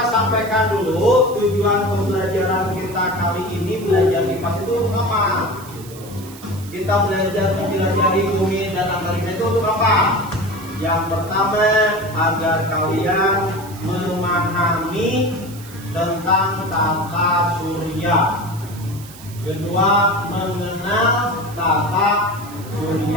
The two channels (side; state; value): right; noise; hiss, 18 dB below the sound